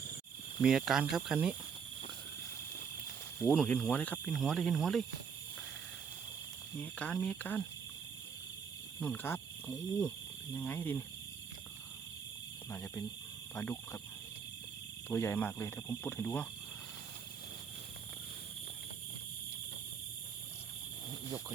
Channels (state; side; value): quieter; left; 6.5 dB